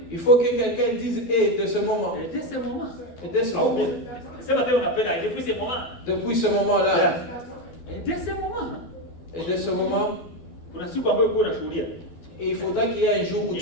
Il faut que quelqu'un dise et de ce moment. Et dès ce moment. Depuis ce moment-là. Et dès ce moment. Et il faudra qu'il y ait un jour où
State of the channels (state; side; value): late; right; 12 ms